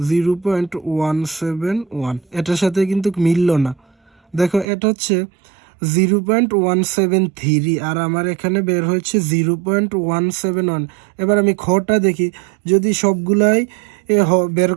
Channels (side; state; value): left; drops out; at 4.7 s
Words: 0.171, এটার সাথে কিন্তু মিলল না। দেখো এটা হচ্ছে 0.173 আর আমার এখানে বের হয়েছে 0.171। এবার আমি খটা দেখি, যদি সবগুলাই বের